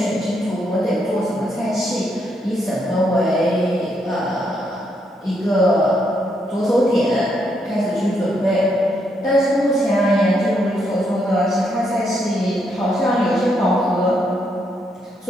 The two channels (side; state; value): both; normal; correlation 0.77